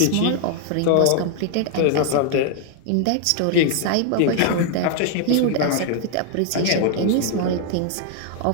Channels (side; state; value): both; different; correlation 0.00